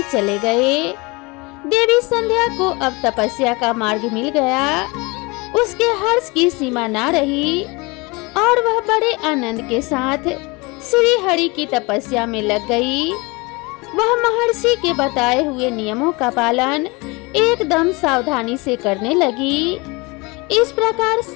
चले गए। देवी संध्या को अब तपस्या का मार्ग मिल गया। उसके हर्ष की सीमा ना रही और वह बड़े आनंद के साथ श्री हरि की तपस्या में लग गई। वह महर्षि के बताए हुए नियमों का पालन एकदम सावधानी से करने लगी। इस प्रकार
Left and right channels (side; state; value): right; quieter; 26.1 dB